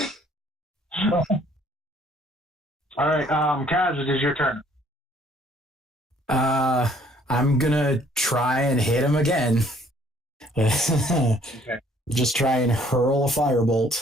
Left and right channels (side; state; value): both; normal; correlation 0.61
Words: All right, Kaz, it is your turn. I'm gonna try and hit him again. Okay. Just try and hurl a